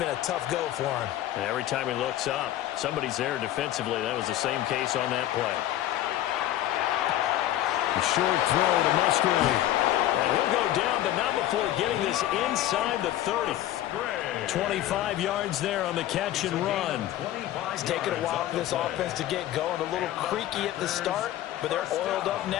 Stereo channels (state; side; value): quieter; right; 13.5 dB